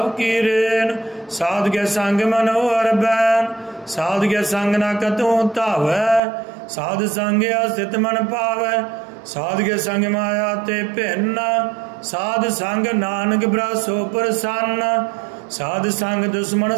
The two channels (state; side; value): drops out; left; at 6.2 s